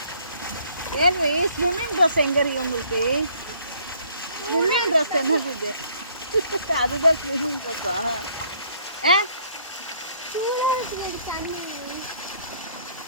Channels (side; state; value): both; inverted; correlation -0.62